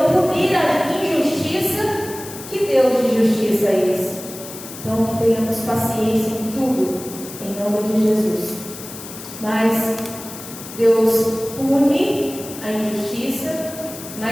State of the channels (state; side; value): noise; left; hiss, 13 dB below the sound